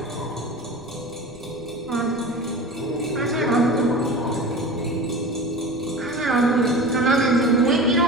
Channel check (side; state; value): left; noise; rumble, 22 dB below the sound